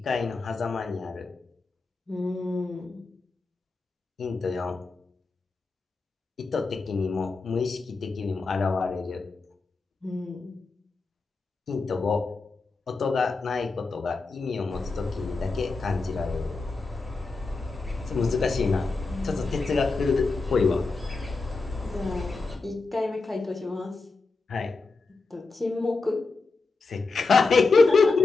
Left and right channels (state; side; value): quieter; right; 3.9 dB